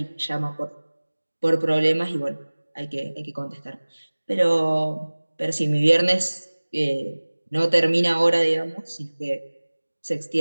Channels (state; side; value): inverted; both; correlation -1.00